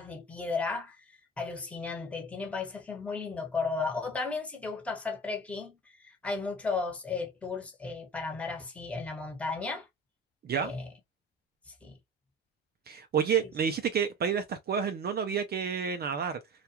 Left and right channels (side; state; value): both; normal; correlation 0.36